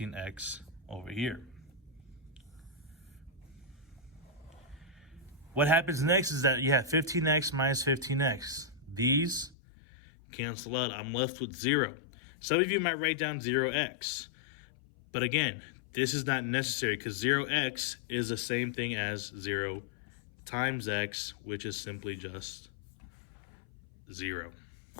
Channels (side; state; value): right; drops out; at 9.6 s